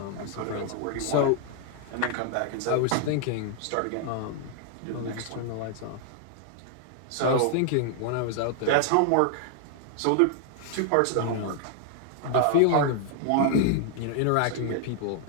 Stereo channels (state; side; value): different; both; correlation 0.00